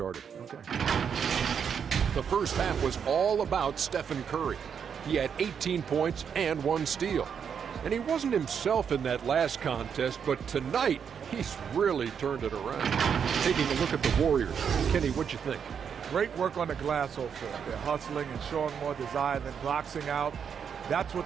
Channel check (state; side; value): quieter; left; 7.3 dB